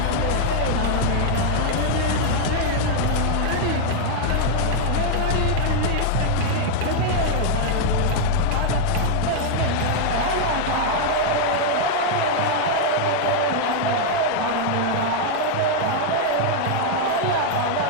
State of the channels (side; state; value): both; different; correlation -0.01